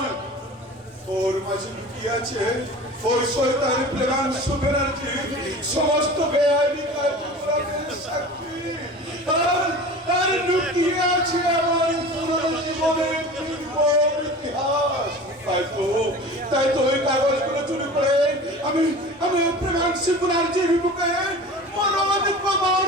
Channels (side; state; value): both; normal; correlation 0.37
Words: ওর মাঝে লুকিয়ে আছে ওই শয়তানি প্রেমাংশু ব্যানার্জি সমস্ত বেআইনি কার্যকলাপের সাক্ষী। আর লুকিয়ে আছে আমার পুরনো জীবনের নির্মম ইতিহাস। তাই তো ওই কাগজগুলো চুরি করে আমি প্রেমাংশু ব্যানার্জির বুকে